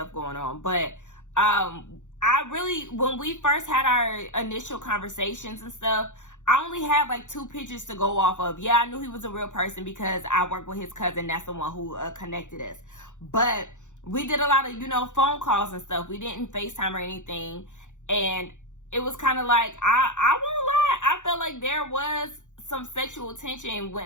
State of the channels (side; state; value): right; late; 0.85 ms